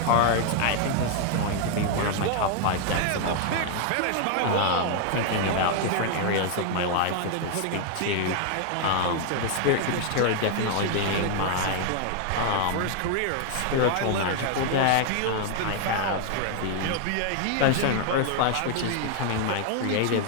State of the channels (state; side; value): different; both; correlation 0.00